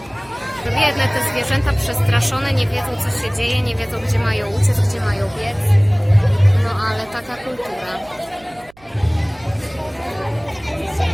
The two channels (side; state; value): right; noise; hum, 27 dB below the sound